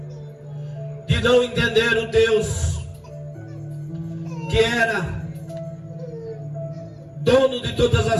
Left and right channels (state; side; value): identical; both; correlation 1.00